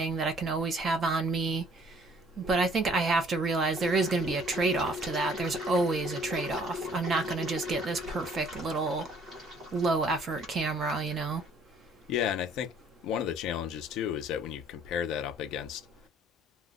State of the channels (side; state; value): both; normal; correlation 0.58